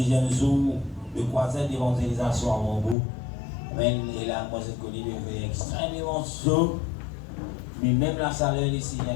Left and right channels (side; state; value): right; drops out; at 3.0 s